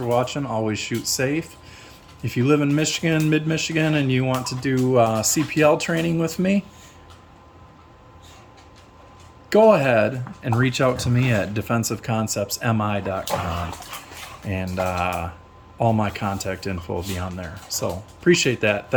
watching. Always shoot safe. If you live in Michigan, mid-Michigan, and you want to do CPL training with me, go ahead and reach out to me at defensiveconceptsmi.com, and all my contact info will be on there. So appreciate that.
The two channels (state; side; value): identical; both; correlation 1.00